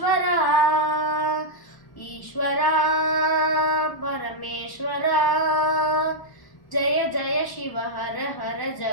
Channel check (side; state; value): right; late; 1.1 ms